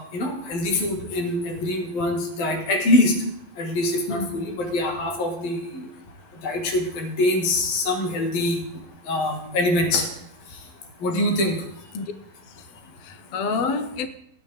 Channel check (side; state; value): right; late; 11 ms